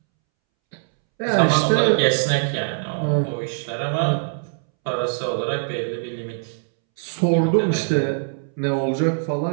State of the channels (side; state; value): left; silent; 64 dB below the other